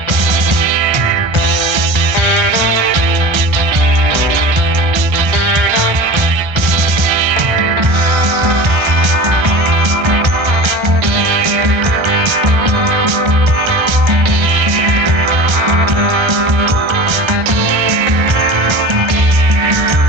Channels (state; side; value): late; left; 1.6 ms